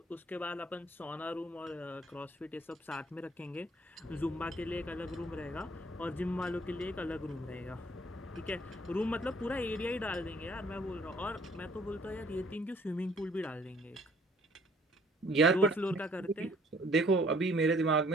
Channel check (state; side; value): normal; both; correlation 0.60